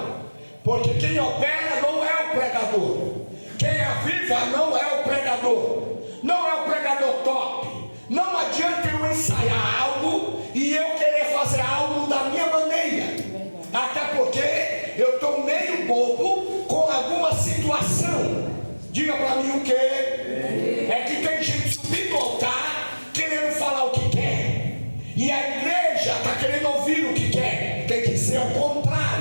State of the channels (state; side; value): inverted; both; correlation -1.00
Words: Porque quem opera não é o pregador. Quem aviva não é o pregador. Não é o pregador top. Não adianta eu ensaiar algo e eu querer fazer algo da minha maneira. Até porque eu estou meio bobo com alguma situação. Diga para mim o que? É que tem gente subindo ao altar querendo falar o que quer. E a igreja está querendo ouvir o que quer. Tem que ser o